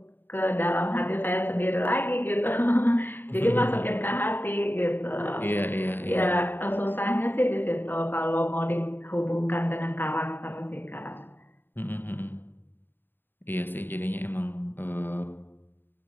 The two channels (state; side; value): late; right; 0.095 ms